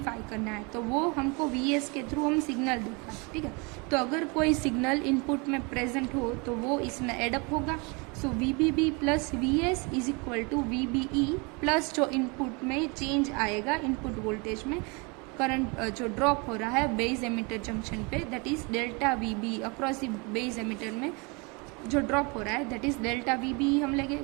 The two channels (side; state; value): left; quieter; 30.0 dB